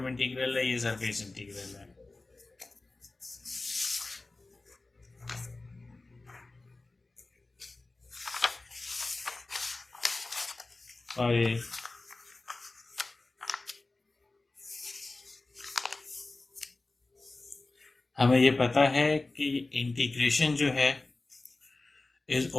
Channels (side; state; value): right; quieter; 3.2 dB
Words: इंटीग्रल है, ये सरफेस इंटीग्रल है। और ये हमें ये पता है कि इंटीग्रेशन जो है is